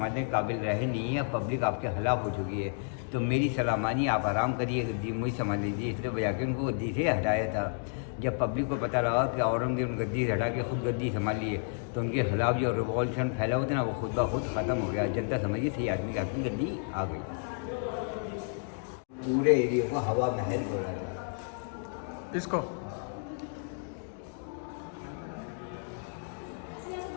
के काबिल रहे नहीं है, पब्लिक आपके खिलाफ हो चुकी है, तो मेरी सलाह मानिए, आप आराम करिए, गद्दी मुझे संभाल लीजिए। इसलिए बजा के उनको गद्दी से हटाया था। जब पब्लिक को पता लगा कि औरंगजेब गद्दी से हटा के खुद गद्दी संभाल लिए, तो उनके खिलाफ जो रिवॉल्यूशन फैला हुआ था ना, वो खुद ब खुद ख़त्म हो गया। जनता समझिए सही आदमी का गद्दी आ गई। पूरे एरिया को हवा महल बोला था। इसको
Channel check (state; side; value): silent; right; 57 dB below the other